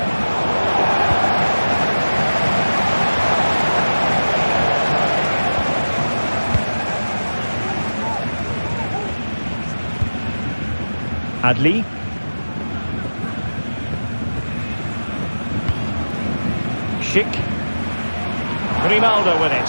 Adli. Schick. Grimaldo with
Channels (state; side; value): inverted; both; correlation -1.00